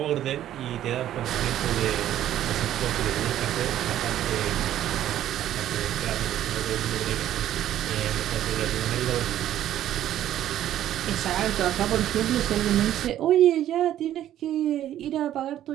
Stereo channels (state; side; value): quieter; left; 12.1 dB